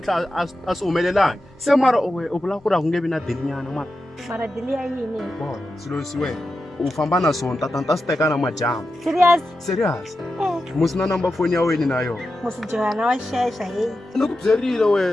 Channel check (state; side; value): normal; both; correlation 0.90